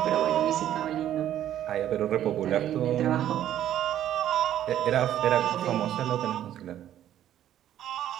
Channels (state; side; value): quieter; left; 11.5 dB